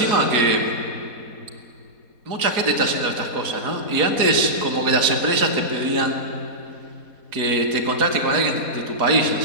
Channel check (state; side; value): late; left; 4.1 ms